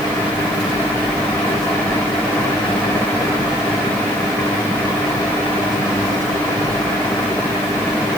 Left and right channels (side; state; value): left; noise; hiss, 18 dB below the sound